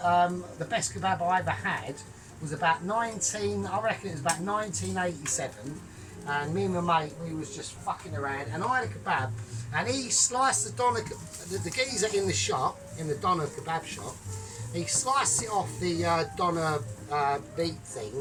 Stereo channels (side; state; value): both; identical; correlation 1.00